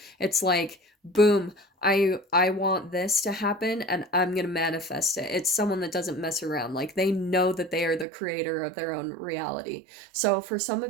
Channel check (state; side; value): drops out; left; at 8.1 s